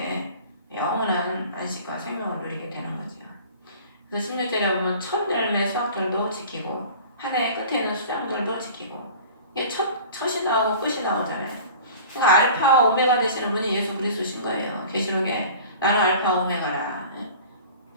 영원한 안식과 생명을 누리게 되는 거죠. 그래서 16절에 보면 첫 열매 수확절도 지키고 한 해 끝에는 수장절도 지키고 이게 첫이 나오고 끝이 나오잖아요. 그러니까 알파와 오메가 되시는 분이 예수 그리스도신 거예요. 계시록에 나는 알파 오메가라.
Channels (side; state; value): both; inverted; correlation -0.42